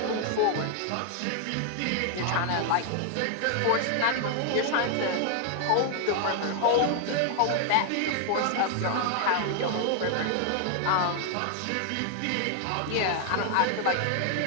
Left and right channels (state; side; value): different; both; correlation 0.00